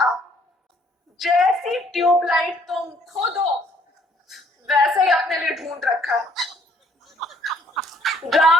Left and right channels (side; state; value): both; normal; correlation 0.62